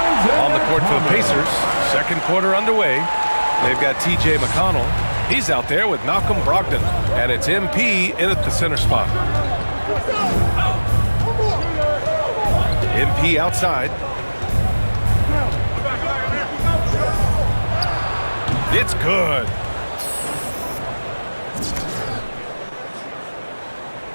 On the court for the Pacers, second quarter underway. They've got T.J. McConnell. He's out there with Malcolm Brogdon, and it's MP in at the center spot. MP outside. It's good.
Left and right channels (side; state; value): both; inverted; correlation -1.00